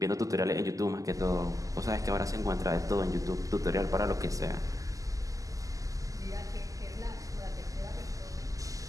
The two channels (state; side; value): late; left; 0.17 ms